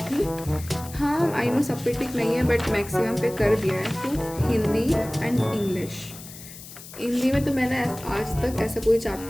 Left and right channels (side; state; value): left; noise; hiss, 15 dB below the sound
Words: थी। हाँ, आई नो सब पे टिक नहीं है, बट मैक्सिमम पे कर दिया है। तो हिंदी एंड इंग्लिश, हिंदी में तो मैंने आज तक ऐसा कोई